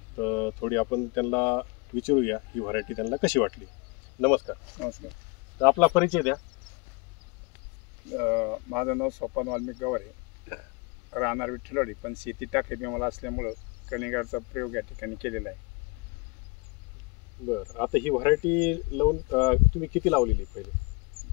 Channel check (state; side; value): quieter; right; 29.6 dB